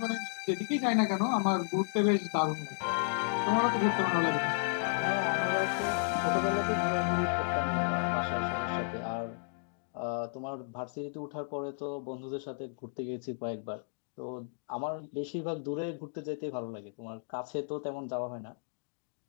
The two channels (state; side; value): silent; right; digital silence